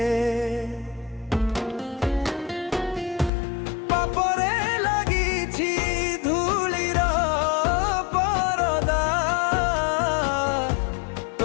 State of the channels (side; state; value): right; drops out; at 3.3 s